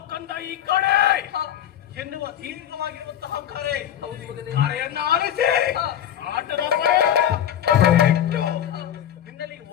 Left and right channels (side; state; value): right; quieter; 10.5 dB